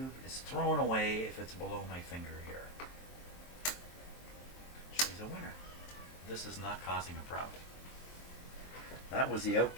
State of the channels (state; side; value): late; right; 23 ms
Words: is thrown away if it's below my finger here. She's a winner. This is not causing a problem. That was the